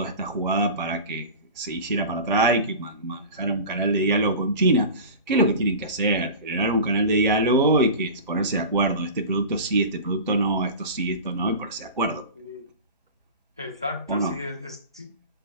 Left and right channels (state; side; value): inverted; both; correlation -0.33